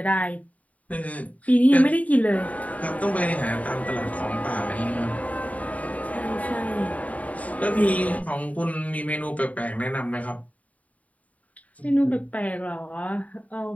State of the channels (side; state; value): right; late; 0.070 ms